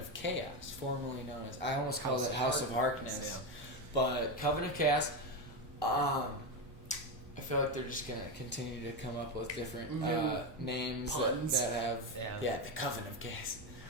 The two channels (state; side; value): normal; both; correlation 0.12